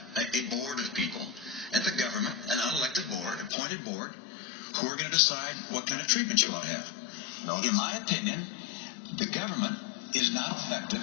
a board of people at the government, an unelected board, appointed board, who are going to decide what kind of treatment you ought to have. In my opinion, the government is not effective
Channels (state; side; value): drops out; right; at 3.5 s